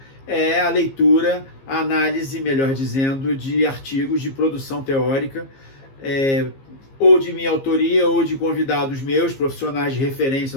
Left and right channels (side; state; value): right; late; 15 ms